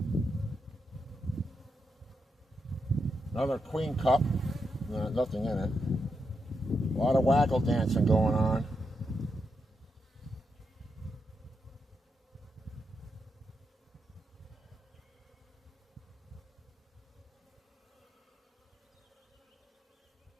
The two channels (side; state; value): both; normal; correlation 0.84